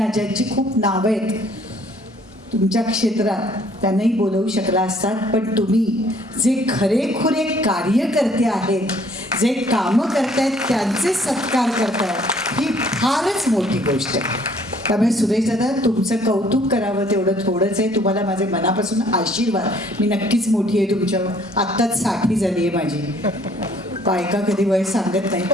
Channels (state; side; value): normal; both; correlation 0.60